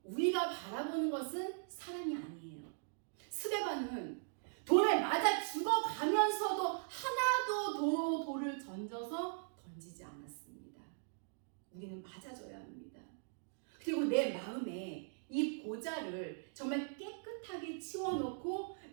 우리가 바라보는 것은 사람이 아니에요. 스데반은 돌에 맞아 죽어가면서도 하나도 돌을 던지지 않았습니다. 우리는 맞아줘야 합니다. 그리고 내 마음에 이 보좌를 정말 깨끗하게 치워놓고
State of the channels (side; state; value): left; silent; digital silence